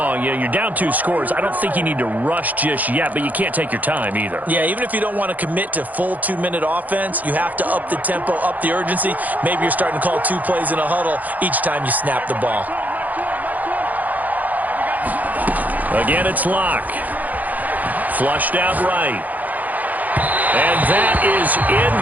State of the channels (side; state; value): left; late; 0.081 ms